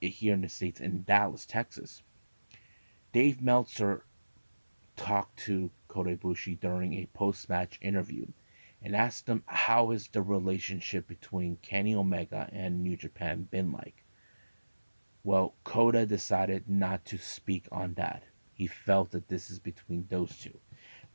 in the States in Dallas, Texas, Dave Meltzer talked to Kota Ibushi during a post-match interview and asked him how is the relationship between Kenny Omega and New Japan been like. Well, Kota decided not to speak on that. He felt that this is between those two,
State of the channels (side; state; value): both; inverted; correlation -1.00